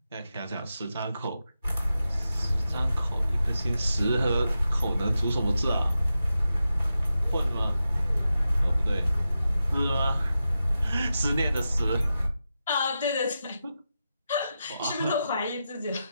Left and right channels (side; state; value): both; inverted; correlation -0.90